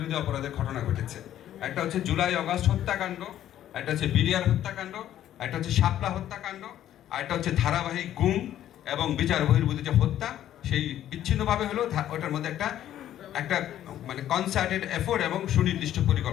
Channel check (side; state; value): right; quieter; 11.8 dB